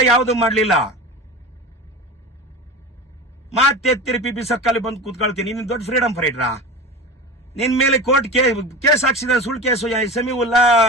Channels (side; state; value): both; normal; correlation 0.29